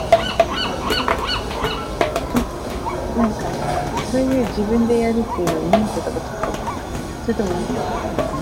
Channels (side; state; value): both; identical; correlation 1.00